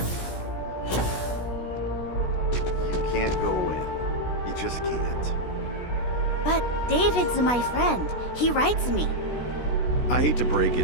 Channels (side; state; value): right; late; 16 ms